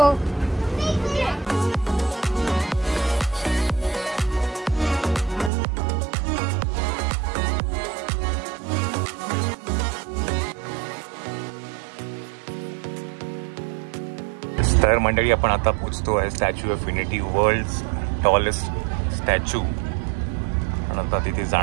तर मंडळी आपण आता पोहोचतो आहे statue of unity, world tallest statue. आणि आता तिथे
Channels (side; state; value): left; drops out; at 5.5 s